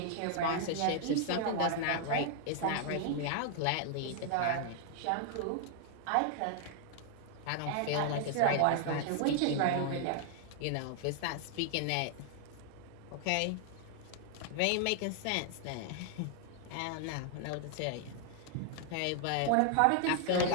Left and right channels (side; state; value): both; different; correlation 0.00